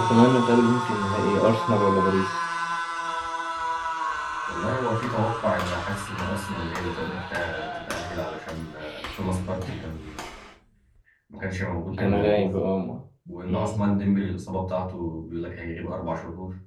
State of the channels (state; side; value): identical; both; correlation 1.00